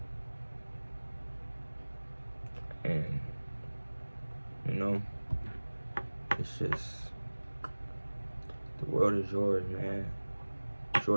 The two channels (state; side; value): inverted; both; correlation -1.00